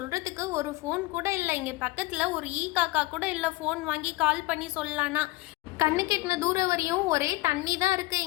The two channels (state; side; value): quieter; right; 20.2 dB